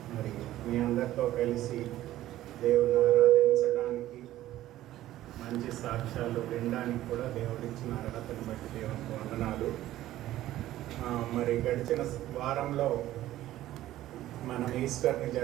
మరి మీ అందరితో కలిసి దేవుని ఆరాధించడానికి మంచి సాక్ష్యాలు వినడానికి కూడా దేవుడిచ్చిన అర్హతను బట్టి దేవునికి వందనాలు. మరి గడిచిన వారంలో మనం ఈస్టర్ని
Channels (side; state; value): left; quieter; 14.3 dB